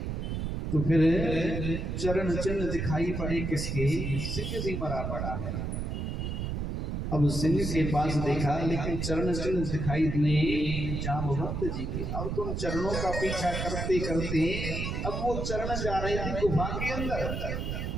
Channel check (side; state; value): right; noise; rumble, 2 dB below the sound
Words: तो फिर चरण चिन्ह दिखाई पड़े किसके? सिंह भी मरा पड़ा है। अब सिंह के पास देखा, लेकिन चरण चिन्ह दिखाई दिए जाम्बवंत जी के। अब तुम चरणों का पीछा करते करते अब वो चरण जा रहे थे गुफा के अंदर।